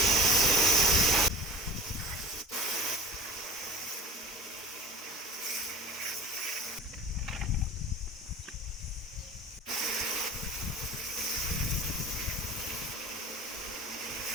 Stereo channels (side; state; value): both; normal; correlation 0.38